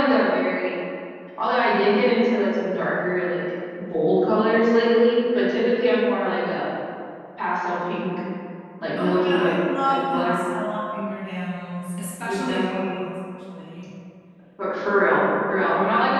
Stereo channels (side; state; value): both; identical; correlation 1.00